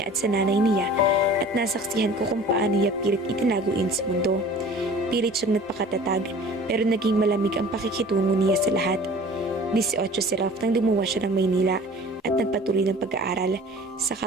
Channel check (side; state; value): both; normal; correlation 0.45